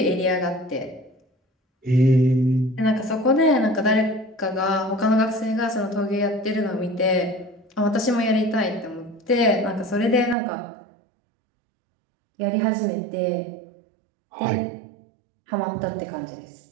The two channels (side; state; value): left; drops out; at 10.4 s